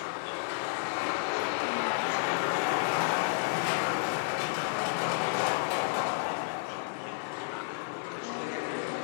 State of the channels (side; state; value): right; silent; 57 dB below the other